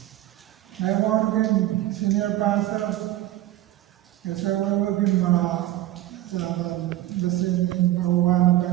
Ngayon din senior pastor Kaesaewa din mga nasin pauwan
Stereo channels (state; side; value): quieter; left; 14.5 dB